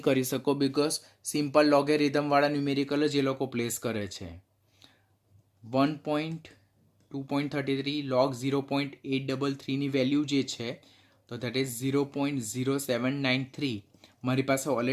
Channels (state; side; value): identical; both; correlation 1.00